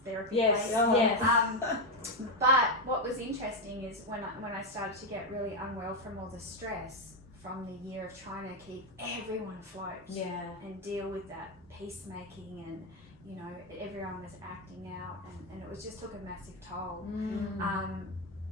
therapy. Yes, place. yes. But what was interesting is when I started to get really unwell from all the stress from the year of trying to keep everyone afloat. Yeah. And deal with that peacemaking, and everyone was acting out, and it was just took a massive toll.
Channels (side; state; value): both; normal; correlation 0.06